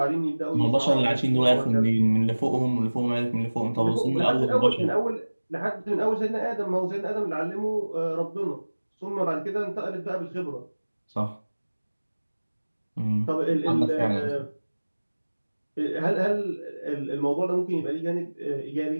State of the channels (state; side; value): inverted; both; correlation -1.00